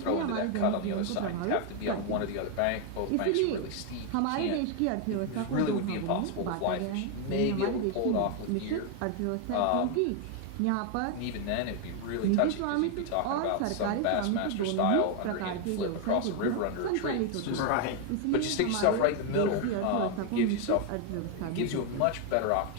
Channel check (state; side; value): different; both; correlation 0.01